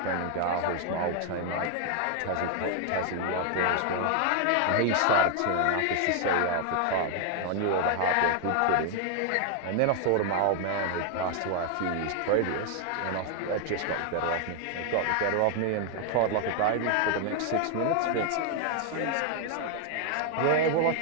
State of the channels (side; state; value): both; different; correlation 0.00